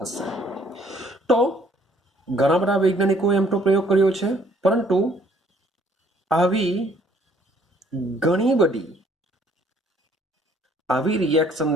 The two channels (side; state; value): both; normal; correlation 0.61